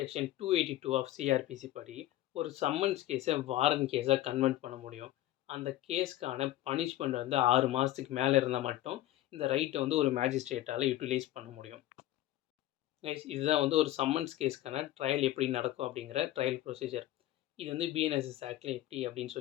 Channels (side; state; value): right; quieter; 14.7 dB